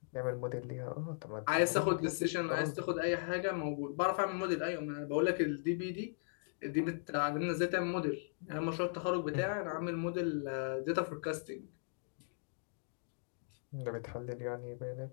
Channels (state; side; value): silent; right; digital silence